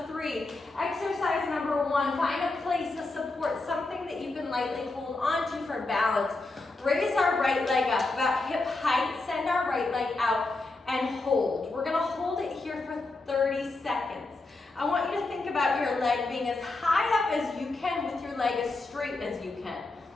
3. Exercise number 1, find a place of support, something that you can lightly hold onto for balance. Raise our right leg up about hip height, send our right leg out, and hold. We're going to hold it here for 30 seconds. I want you to think about your leg being as high up as you can with your leg as straight as you can.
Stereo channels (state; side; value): quieter; right; 3.3 dB